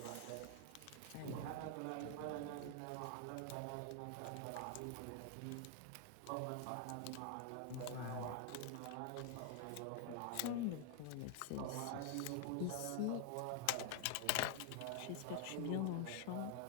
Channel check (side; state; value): both; different; correlation 0.00